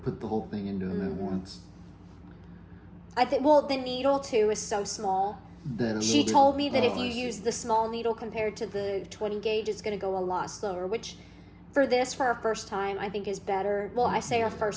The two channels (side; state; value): both; identical; correlation 1.00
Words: put the whole thing into them at once. I think. Well, the needle too is so small. She told me that if you use the small needle compared to the 20 gauge, it's going to go a lot slower, which for our first time, I think is better. Well, I say our